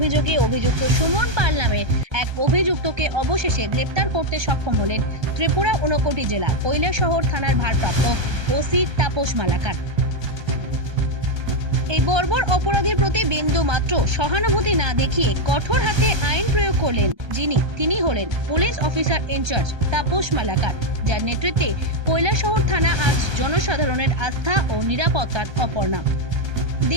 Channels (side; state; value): left; late; 1.3 ms